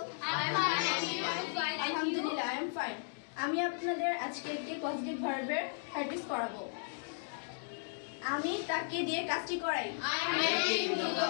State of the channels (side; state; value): right; silent; digital silence